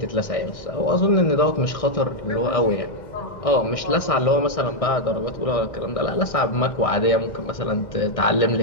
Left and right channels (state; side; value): late; right; 1.6 ms